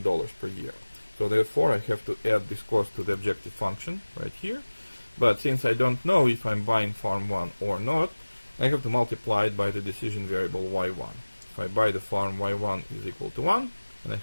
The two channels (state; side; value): inverted; both; correlation -1.00